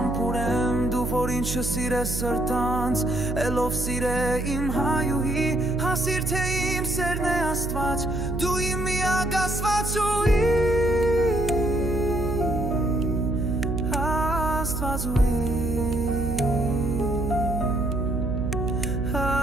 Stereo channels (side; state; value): right; noise; hum, 4 dB below the sound